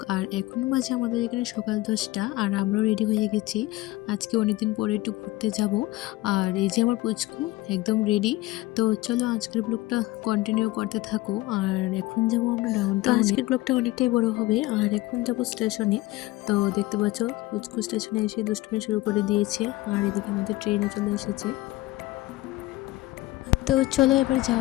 আর এখন বাজে আমাদের এখানে সকাল 10টা, আর আমরাও রেডি হয়ে গেছি। আজকে অনেকদিন পরে একটু ঘুরতে যাব। আর এই যে আমার পুচকু একদম রেডি। তো চলো আজকের ব্লগটা কন্টিনিউ করতে থাকো। আর এখন যাব আমরা ডাউনটাউনে। আজকের ব্লগটা অনেকটাই বড় হবে। আর এখন যাব স্টেশনে। তো দেখতে পাচ্ছ পুচকু স্টেশনে এসে দুষ্টুমি শুরু করে দিয়েছে। আর এদিকে আমাদের ট্রেনও চলে এসেছে। তো চলো এবার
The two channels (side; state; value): right; quieter; 18.5 dB